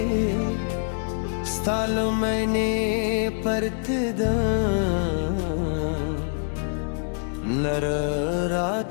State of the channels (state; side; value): silent; right; digital silence